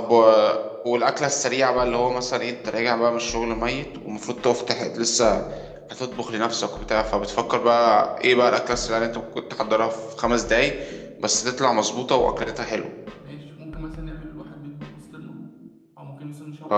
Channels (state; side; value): identical; both; correlation 1.00